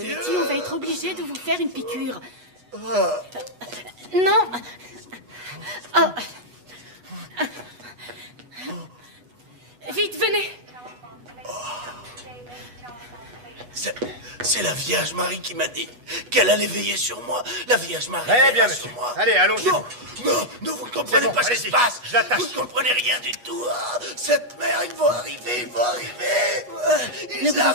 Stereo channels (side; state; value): left; late; 8.2 ms